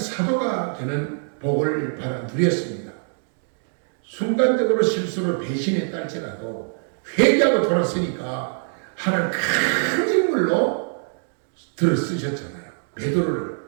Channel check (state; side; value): silent; left; digital silence